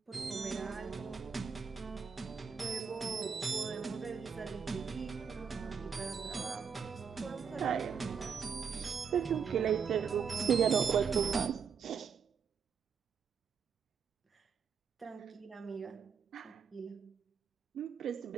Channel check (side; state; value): left; quieter; 6.5 dB